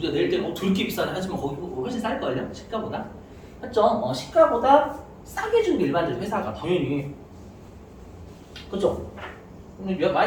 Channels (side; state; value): both; identical; correlation 1.00